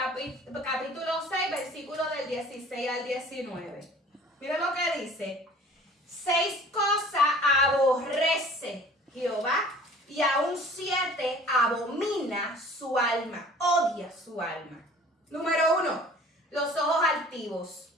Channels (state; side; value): normal; both; correlation 0.48